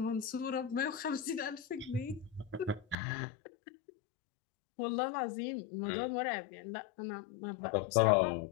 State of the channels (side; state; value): right; drops out; at 3.0 s